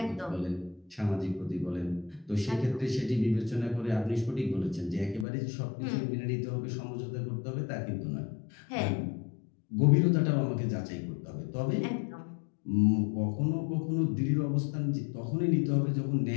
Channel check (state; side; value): drops out; right; at 5.2 s